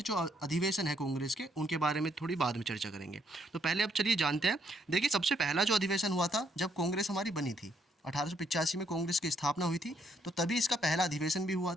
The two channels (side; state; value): both; normal; correlation 0.71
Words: जो अधिवेशन है कांग्रेस के, उनके बारे में थोड़ी बाद में चर्चा करेंगे। तो पहले अब चलिए जानते हैं। देखिए, सबसे पहला जो अधिवेशन हुआ था जब कांग्रेस हमारी बनी थी, 1885 में कांग्रेस की स्थापना हुई थी, तो तभी इसका पहला अधिवेशन भी हुआ